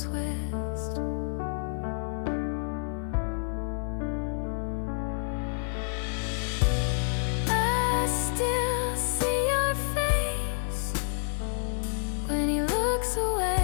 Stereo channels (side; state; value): right; silent; digital silence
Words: twist? I still see your face when he looks